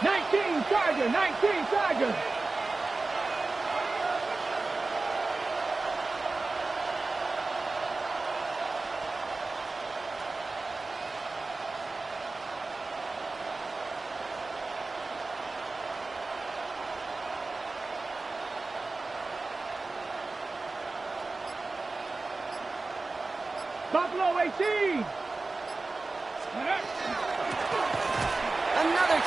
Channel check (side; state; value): left; quieter; 3.5 dB